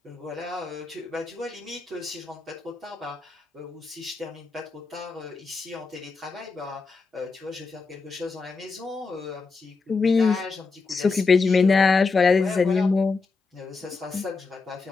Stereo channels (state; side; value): quieter; right; 4.4 dB